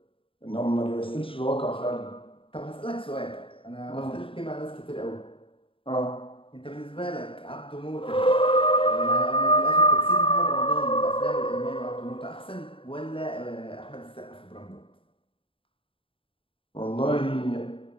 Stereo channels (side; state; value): right; late; 0.26 ms